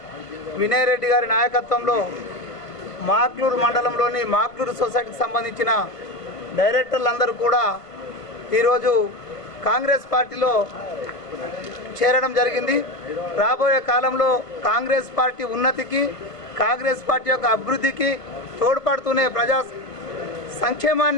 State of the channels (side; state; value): right; late; 1.4 ms